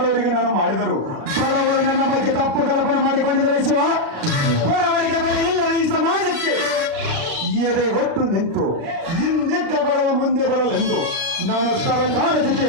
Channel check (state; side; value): late; left; 36 ms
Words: ನಾನು ಮಾಡಿದರು. ಬಡವರು ನನ್ನ ಬಗ್ಗೆ ತಪ್ಪು ಕಲ್ಪನೆ ಮಾಡಿಕೊಂಡಿದ್ದಾರೆ ಶಿವ. ಬಡವರಿಗೆ ಬೆಲೆ ಇಲ್ಲ ಈ ಸಮಾಜಕ್ಕೆ. ಎದೆ ಹೊಟ್ಟು ನಿಂತು ಹಿಂದಿದ್ದ ಬಡವ ಮುಂದೆ ಬರಲೆಂದು ನಾನು ಸರ್ಕಾರದಿಗೆ